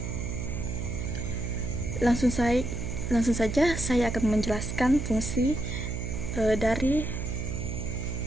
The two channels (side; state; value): right; noise; hum, 4 dB below the sound